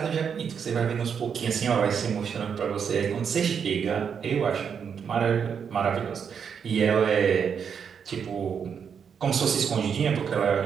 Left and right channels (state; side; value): quieter; left; 7.1 dB